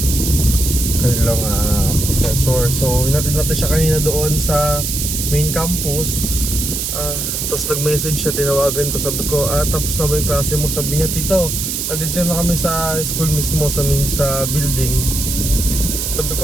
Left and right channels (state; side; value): noise; right; hiss, 2 dB below the sound